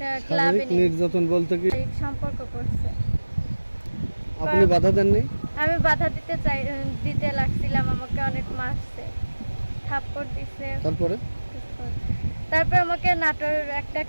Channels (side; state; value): both; inverted; correlation -1.00